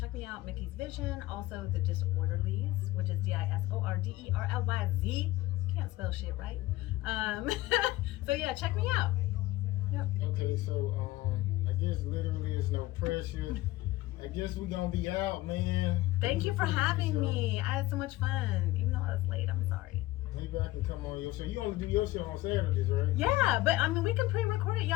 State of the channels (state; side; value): quieter; right; 17.8 dB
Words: me out, Mickey's Vision. Also The Disorderlies, which is DISORDERLYZ. Can't spell shit right. So yeah, check me out. Yep. Okay, so I guess literally there's no pressure. I guess we're gonna be out, man. Thank you for having me. I had so much fun, even though I was late. I'm sorry. Maybe I can come on your show. You only do your show on Saturdays, right? Yeah, but I mean, we can pre-record it.